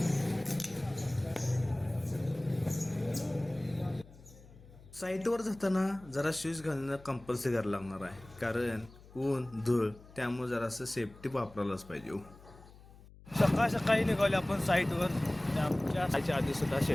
साईटवर जाताना जरा शूज घालणं कंपल्सरी करायला लागणार आहे, कारण ऊन धूळ त्यामुळे जरासं सेफ्टी वापरायलाच पाहिजे. सकाळ सकाळी निघाले आपण साईटवर. आमच्या आधी सुद्धा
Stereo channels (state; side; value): noise; left; hum, 21 dB below the sound